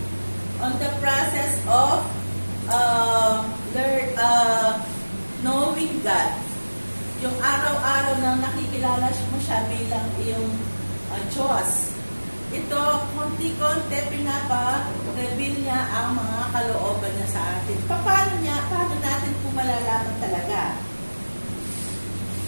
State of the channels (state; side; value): inverted; both; correlation -1.00